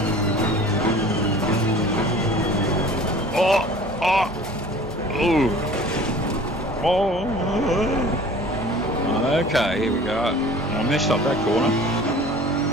Okay, here we go. I messed up that corner.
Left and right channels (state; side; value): normal; both; correlation 0.45